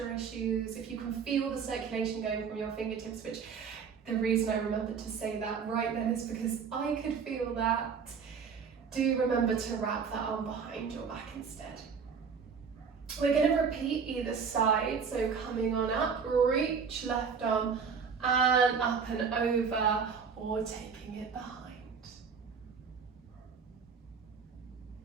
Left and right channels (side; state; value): left; quieter; 6.1 dB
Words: issues, if you can feel the circulation going from your fingertips, which the reason I remembered to say that right then is because I could feel that. Do remember to wrap that arm behind your back instead. We're going to repeat either side, so coming on up, reach left arm and up and over, or taking it behind.